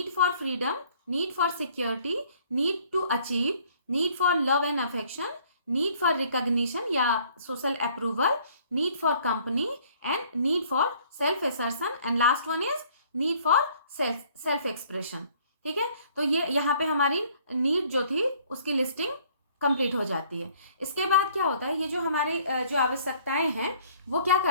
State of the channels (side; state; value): both; inverted; correlation -0.59